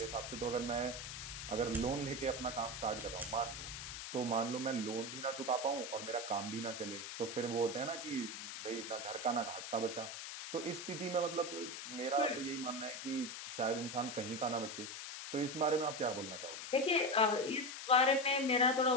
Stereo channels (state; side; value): noise; left; hiss, 7 dB below the sound